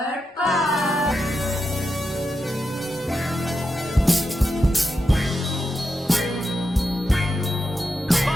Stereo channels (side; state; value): both; normal; correlation 0.87